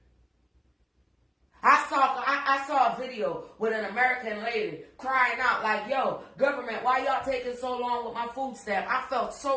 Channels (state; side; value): identical; both; correlation 1.00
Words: I saw a video with an American lady crying out like, yo, government, why y'all taking so long with my food stamp? I felt